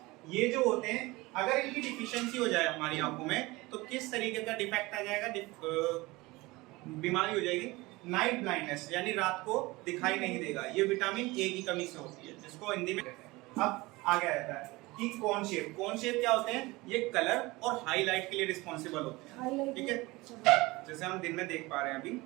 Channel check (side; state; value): left; quieter; 21.8 dB